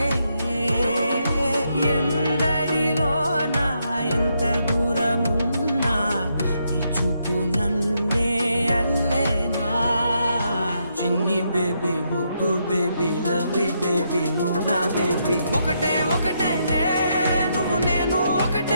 ఎందరిలోనా ఎంత దూరమున్నా నీ చూపు నన్నే అల్లేనా చిన్ని బేబీ ముద్దు బేబీ లవ్లీ బేబీ నువ్వు నా బేబీ ఒకటే ఒకటేలే నువ్వు నేను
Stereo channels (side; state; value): both; inverted; correlation -0.78